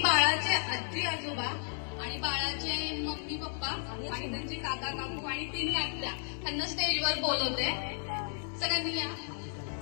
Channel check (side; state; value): right; silent; digital silence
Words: बाळाचे आजी आजोबा आणि बाळाचे मम्मी पप्पा आणि त्यांचे काका काकू आणि तिन्ही आत्या त्यांना स्टेजवर बोलवते. सगळ्यांनी या.